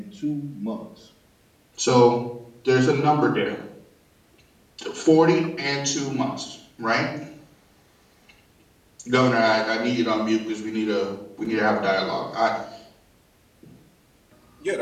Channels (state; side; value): identical; both; correlation 1.00